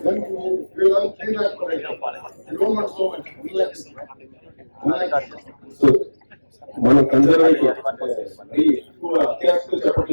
మన కన్జర్వేటివ్ ఎక్కువ అత్యాశతో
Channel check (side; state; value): both; inverted; correlation -1.00